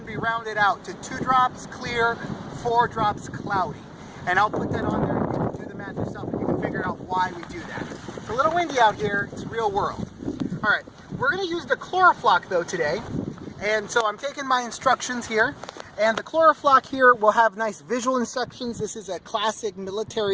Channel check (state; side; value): identical; both; correlation 1.00